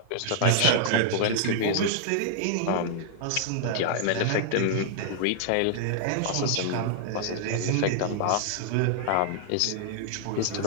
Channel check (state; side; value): different; both; correlation -0.01